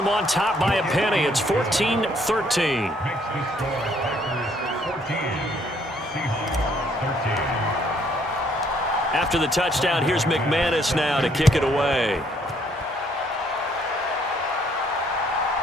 on top by a penny. It's 14-13. After the touchdown, here's McManus now to kick it away.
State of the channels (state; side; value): normal; both; correlation 0.66